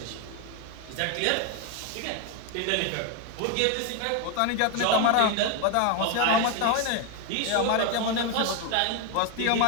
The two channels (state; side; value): different; both; correlation 0.01